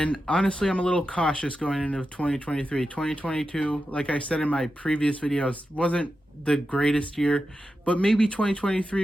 honestly, I'm a little cautious going into 2023. 2022, like I said in my previous videos, wasn't the greatest year, but maybe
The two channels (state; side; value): normal; both; correlation 0.90